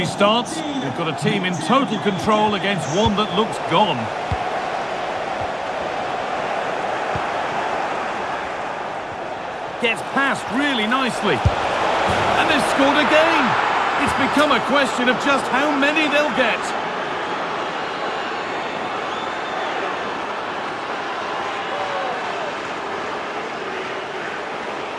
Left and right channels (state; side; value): identical; both; correlation 1.00